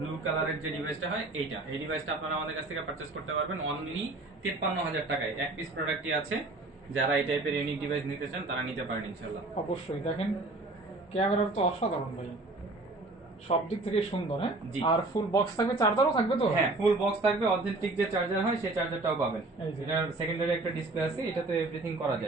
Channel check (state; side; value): quieter; left; 3.1 dB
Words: কালারের যে ডিভাইসটা হয় এইটা, এই ডিভাইসটা আপনারা আমাদের কাছ থেকে পারচেজ করতে পারবেন অনলি 53,000 টাকায়। এক পিস প্রোডাক্টই আছে। যারা এই টাইপের ইউনিক ডিভাইস নিতে চান তারা নিতে পারেন ইনশাআল্লাহ। অবশ্যই দেখেন ক্যামেরা তো অসাধারণ ভাই, সব দিক থেকে সুন্দর। হ্যাঁ, আর ফুল বক্স থাকবে, চার্জারও থাকবে তো? হ্যাঁ, ফুল বক্স থাকবে, অথেন্টিক যে চার্জার হয় সেই চার্জারটাও পাবেন। এটার সেকেন্ডারি একটা ডিসপ্লে আছে, এটাতে এভরিথিং করা